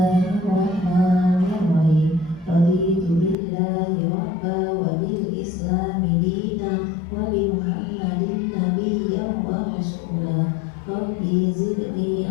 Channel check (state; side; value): drops out; right; at 3.4 s